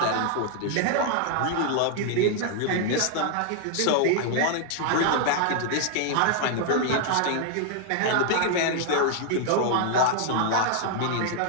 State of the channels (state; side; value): different; both; correlation 0.00